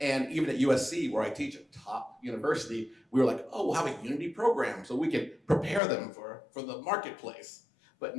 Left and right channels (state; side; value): drops out; right; at 5.8 s